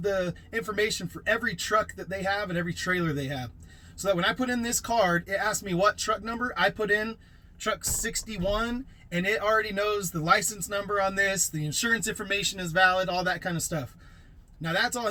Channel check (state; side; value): identical; both; correlation 1.00